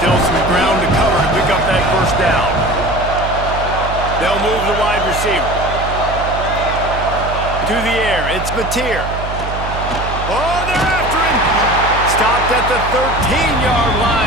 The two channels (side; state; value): right; noise; hum, 7 dB below the sound